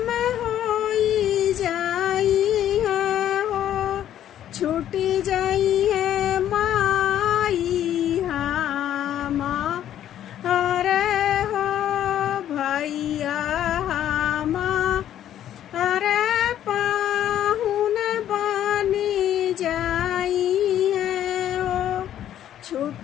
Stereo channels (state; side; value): quieter; right; 11.2 dB